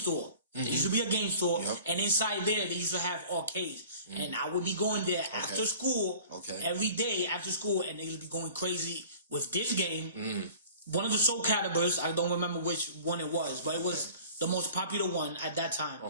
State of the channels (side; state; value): both; inverted; correlation -0.45